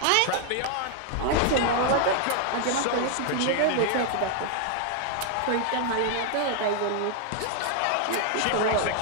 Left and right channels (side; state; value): both; different; correlation 0.00